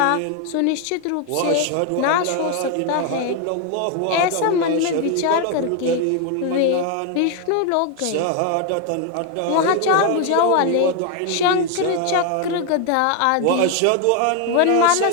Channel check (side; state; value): both; different; correlation 0.01